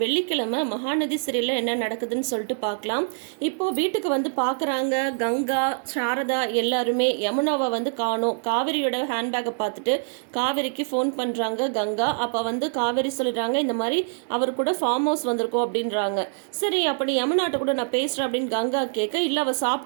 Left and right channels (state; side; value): silent; left; digital silence